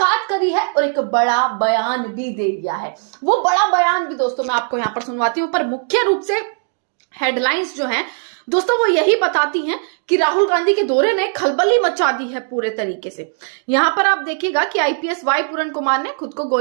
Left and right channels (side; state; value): left; silent; 61 dB below the other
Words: करी है और एक बड़ा बयान भी दे दिया है। वो बड़ा बयान भी दोस्तों मैं आपको यहां पर सुनवाती हूं, पर मुख्य रूप से हेडलाइंस जो हैं दोस्तों वो यही बताती हैं कि राहुल गांधी के दौरे ने खलबली मचा दी है पूरे तरीके से। यहां पर आप देखिएगा कि आईपीएस वाई पूरन कुमार ने खुद को